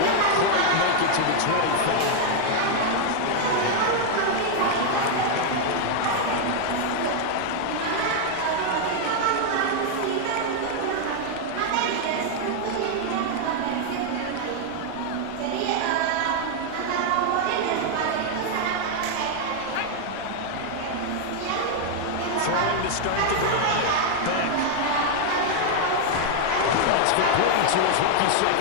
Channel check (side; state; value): both; different; correlation 0.00